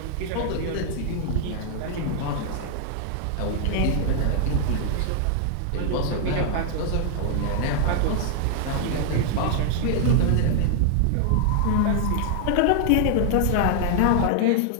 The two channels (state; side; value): different; both; correlation 0.00